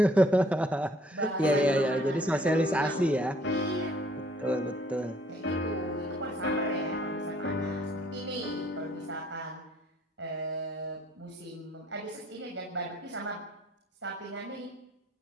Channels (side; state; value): both; normal; correlation 0.62